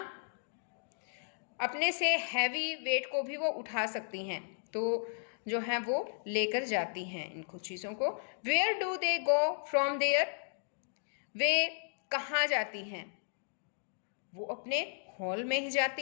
अपने से हैवी वेट को भी वो उठा सकती हैं. तो जो है वो लेकर जाती हैं इनको चीज़ों को. Where do they go from there. वे कहाँ जाती हैं? वो अपने हॉल में ही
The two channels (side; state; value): right; silent; digital silence